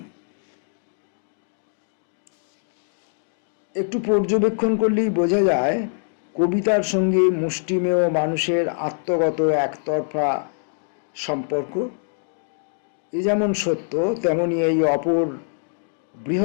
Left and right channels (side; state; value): right; silent; digital silence